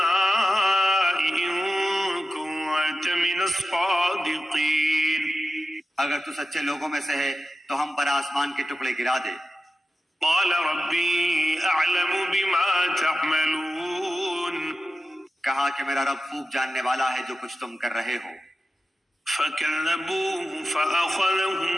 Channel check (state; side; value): normal; both; correlation 0.92